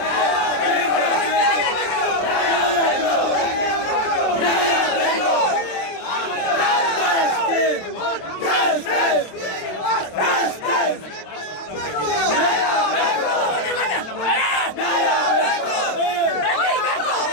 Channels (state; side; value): late; right; 27 ms